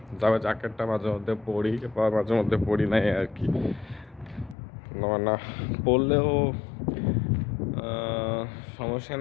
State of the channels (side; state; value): right; drops out; at 4.5 s